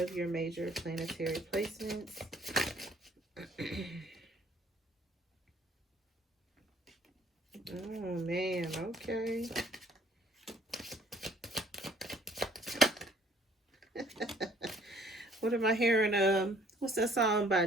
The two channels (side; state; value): both; normal; correlation 0.58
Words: your major planetary placements. Oh man, okay. What am I hearing? What's that song by